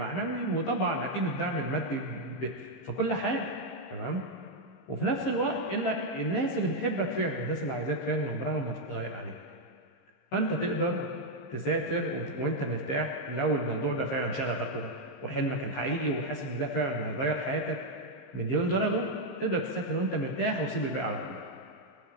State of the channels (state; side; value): late; right; 15 ms